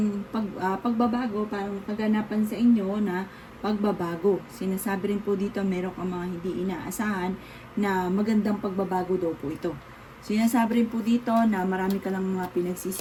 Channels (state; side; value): identical; both; correlation 1.00